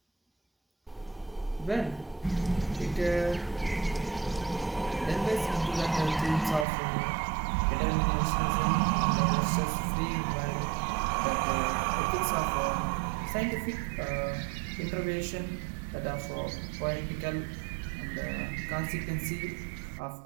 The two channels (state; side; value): drops out; left; at 6.7 s